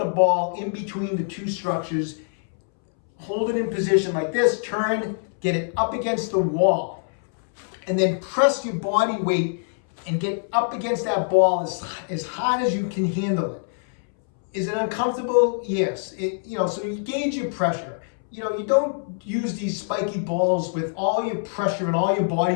ball in between the two structures. Hold it in position like this, turn, get it up against the wall, and then press your body weight and get up against that ball as hard as you can handle it. Is it uncomfortable? Yes. So you gauge your pressure. You don't use these spiky balls with all your pressure and all your body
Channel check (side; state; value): right; silent; 62 dB below the other